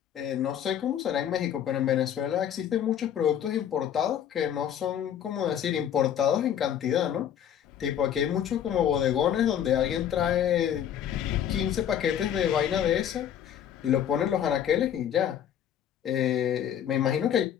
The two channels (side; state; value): right; quieter; 9.7 dB